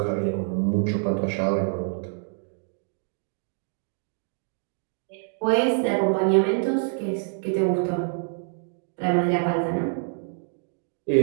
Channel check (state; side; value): silent; left; 61 dB below the other